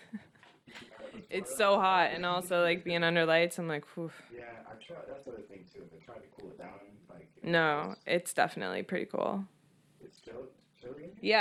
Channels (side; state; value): both; identical; correlation 1.00